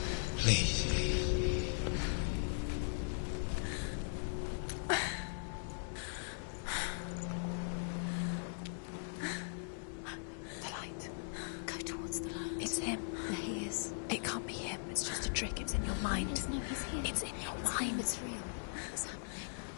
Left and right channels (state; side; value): silent; right; digital silence